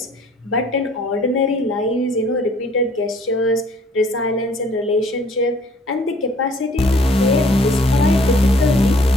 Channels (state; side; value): normal; both; correlation 0.58